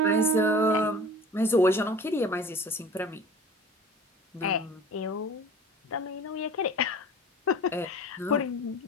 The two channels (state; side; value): normal; both; correlation 0.43